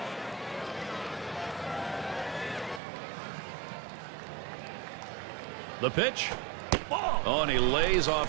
The pitch. Oh, and he lays off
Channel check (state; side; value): drops out; left; at 2.8 s